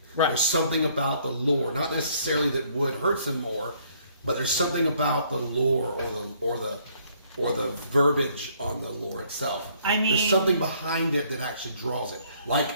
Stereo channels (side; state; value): both; inverted; correlation -0.64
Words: Right. There's something about the lore, not necessarily that wood hurts him more, but there's something about the lore or the verbiage on the lore itself. I mean- there's something behind it that actually draws it. Like